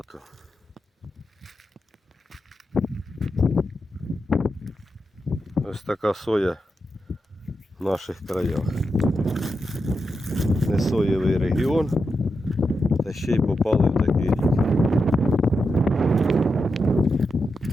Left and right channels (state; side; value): normal; both; correlation 0.87